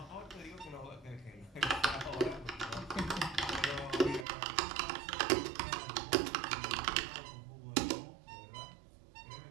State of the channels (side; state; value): left; drops out; at 4.2 s